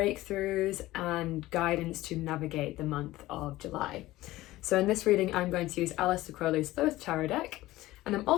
and guidance to navigate the month of July. So in this reading I'm going to use Aleister Crowley's Thoth Deck, and I'm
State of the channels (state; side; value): quieter; right; 17.2 dB